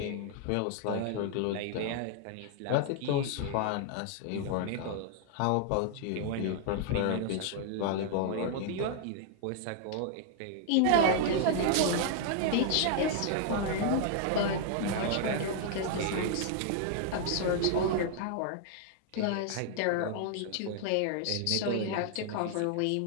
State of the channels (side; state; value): both; different; correlation 0.00